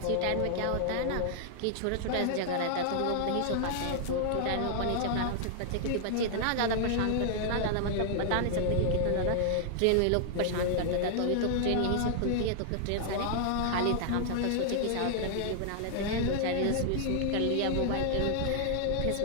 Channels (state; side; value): different; both; correlation -0.01